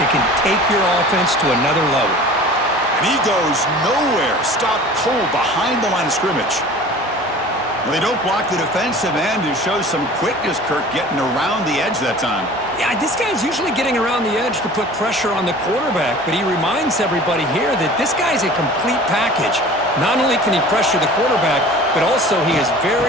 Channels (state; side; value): normal; both; correlation 0.43